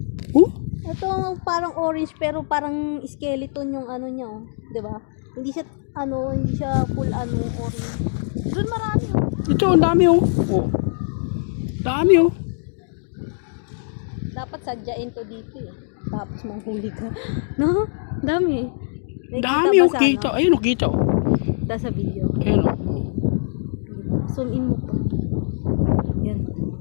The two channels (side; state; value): right; silent; digital silence